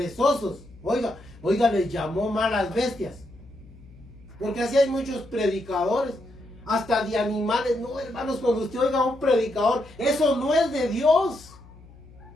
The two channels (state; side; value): noise; left; hum, 22 dB below the sound